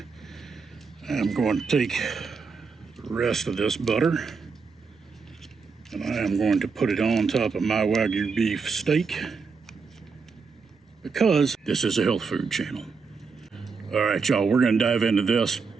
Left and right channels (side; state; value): left; quieter; 5.0 dB